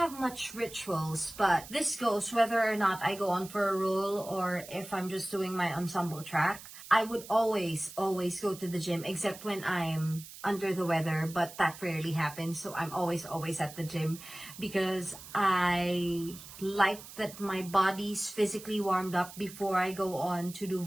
much rituals, but this goes whether or not I go on for a role or if I'm just doing my ensemble track. I would always go to the gym, except when I'm under the weather, but that rarely happens. So I'm always at the gym because I like that my body's physically warmed up before I go on to do a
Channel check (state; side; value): noise; right; hiss, 15 dB below the sound